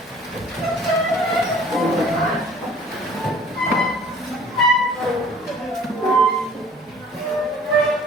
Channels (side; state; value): both; normal; correlation 0.51